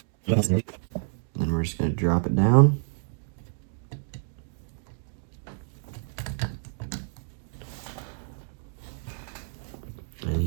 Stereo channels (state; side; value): silent; left; digital silence